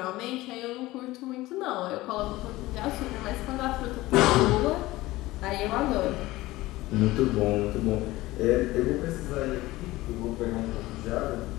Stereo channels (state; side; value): quieter; right; 18.4 dB